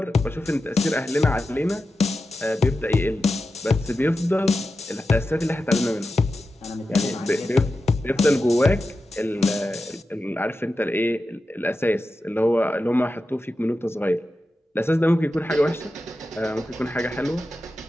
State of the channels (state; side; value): normal; both; correlation 0.91